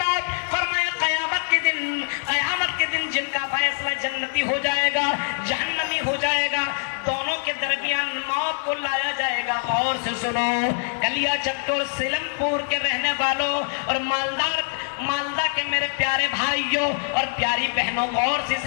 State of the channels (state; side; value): silent; right; 63 dB below the other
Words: فرمایا قیامت کے دن جن کا فیصلہ جنتی ہو جائے گا جہنمی ہو جائے گا دونوں کے درمیان موت کو لایا جائے گا غور سے سنو کلیا چکور سیلم پور کے رہنے والوں اور مالدہ کے میرے پیارے بھائیوں اور پیاری بہنوں غور سے اس